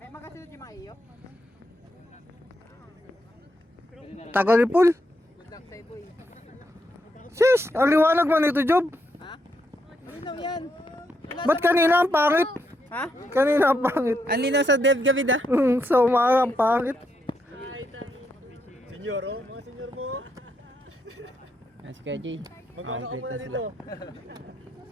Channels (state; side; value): normal; both; correlation 0.79